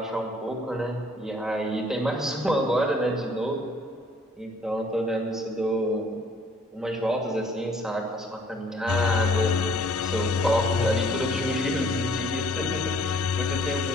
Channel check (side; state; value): both; normal; correlation 0.59